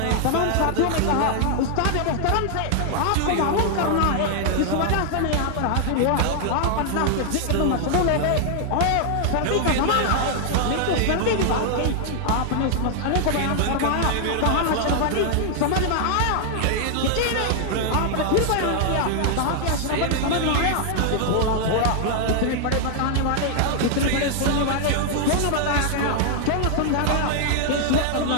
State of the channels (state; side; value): different; both; correlation 0.00